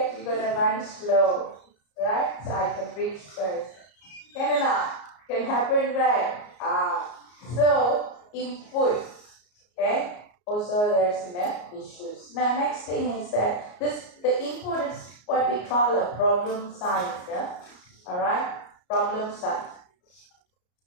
you're gonna run slow, right? So I can reach first. Can happen, right? So input, okay? Also there's issues. Now next thing is that the input is what we call a problem size, alright? Problem size.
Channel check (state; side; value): late; right; 34 ms